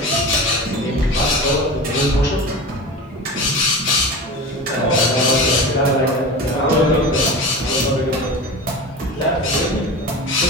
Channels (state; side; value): normal; both; correlation 0.30